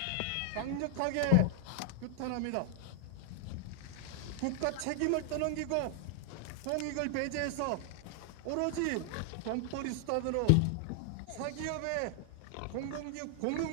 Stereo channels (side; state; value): both; different; correlation 0.00